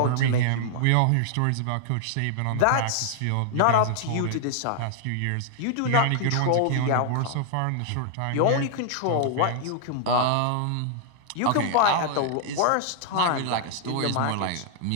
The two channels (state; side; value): different; both; correlation 0.00